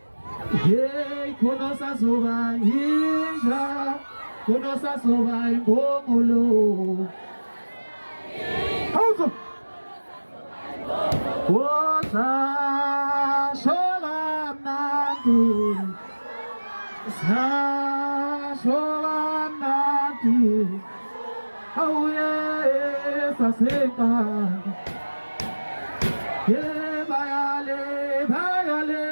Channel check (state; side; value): inverted; both; correlation -1.00